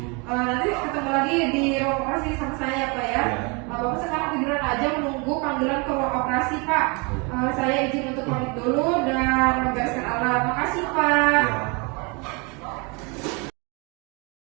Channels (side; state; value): left; quieter; 31.2 dB